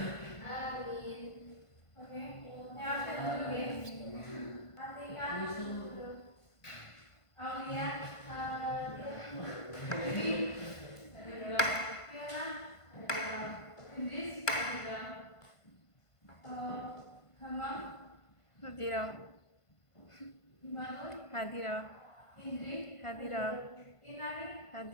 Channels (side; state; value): right; late; 1.5 ms